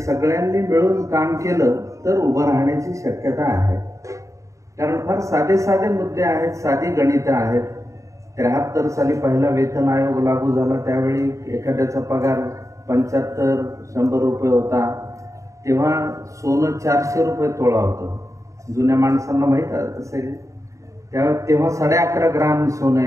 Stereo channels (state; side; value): late; left; 0.15 ms